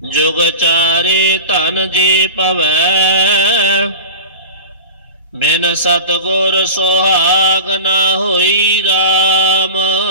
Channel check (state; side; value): inverted; both; correlation -0.31